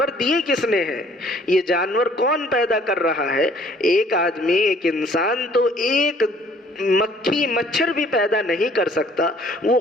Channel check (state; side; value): normal; both; correlation 0.58